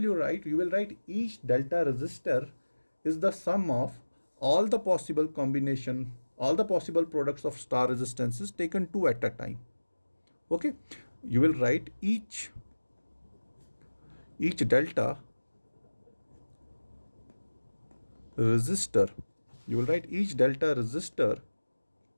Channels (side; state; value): both; inverted; correlation -1.00